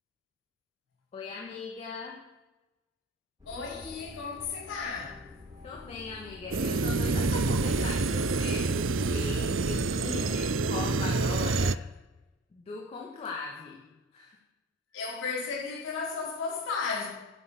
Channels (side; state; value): both; normal; correlation 0.41